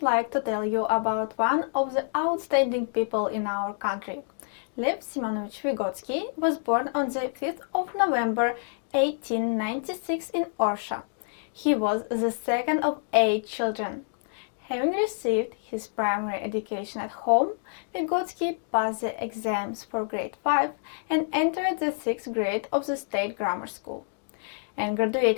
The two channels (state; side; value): silent; right; digital silence